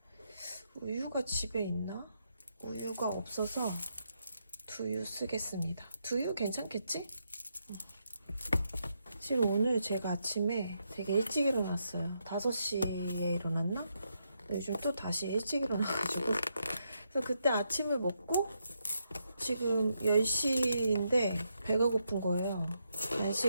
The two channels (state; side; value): inverted; both; correlation -0.80